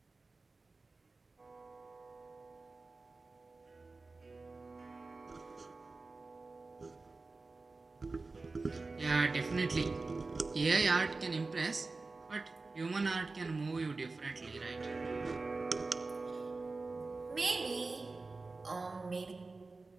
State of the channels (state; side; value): quieter; left; 3.7 dB